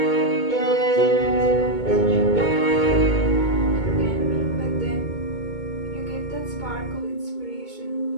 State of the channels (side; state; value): right; late; 2.2 ms